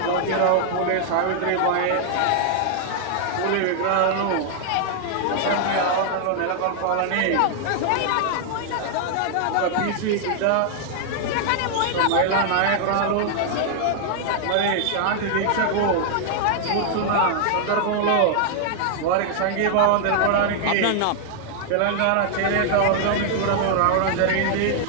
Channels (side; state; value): both; different; correlation 0.00